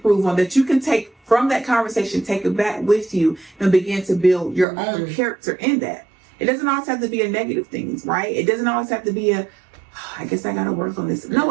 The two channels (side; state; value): left; drops out; at 4.7 s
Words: on, that you can take from that conversation, take it back with you and begin to build your own mm-hmm. character in that? It doesn't always have to be a negative things, right? It doesn't always have to be I guess I got to work on this. No,